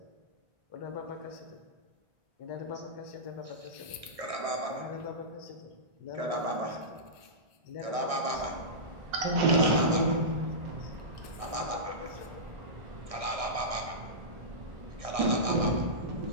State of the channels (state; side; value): late; left; 1.6 ms